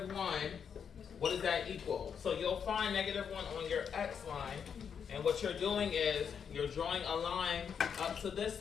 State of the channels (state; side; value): quieter; right; 7.2 dB